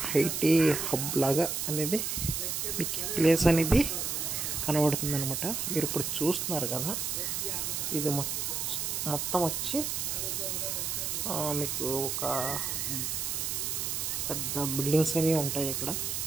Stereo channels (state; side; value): noise; right; hiss, 1 dB below the sound